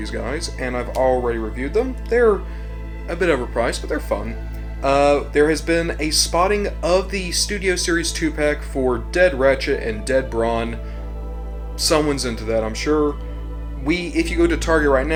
guys, and I've already reviewed them. They're a bit overpriced, but they're fun. There has been a spotting of the Studio Series 2-pack for Dead Ratchet and Dead Brawn. Someone's into that, I'm sure. If you go to Target right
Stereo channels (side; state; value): both; identical; correlation 1.00